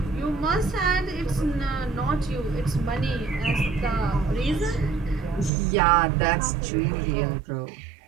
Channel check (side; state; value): left; drops out; at 5.5 s